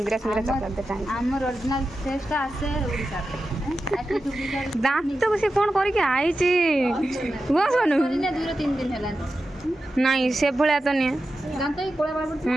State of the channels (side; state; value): both; normal; correlation 0.91